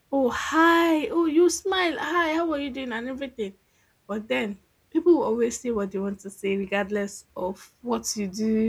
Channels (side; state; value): both; identical; correlation 1.00